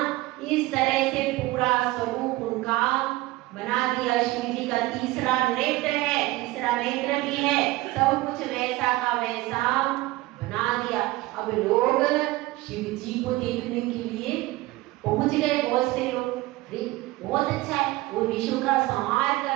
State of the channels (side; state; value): left; quieter; 19.3 dB